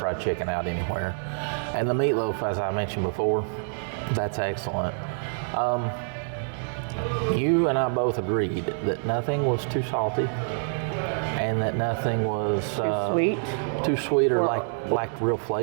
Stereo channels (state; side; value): silent; left; digital silence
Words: chicken out anywhere. And the meatloaf, as I mentioned before, that's excellent. You and I both agreed that nothing was too salty and that nothing was too sweet or lacked real